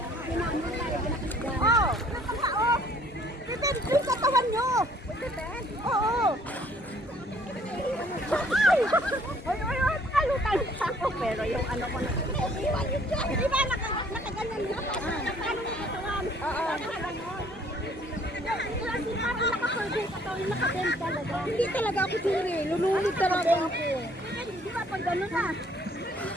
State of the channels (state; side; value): normal; both; correlation 0.60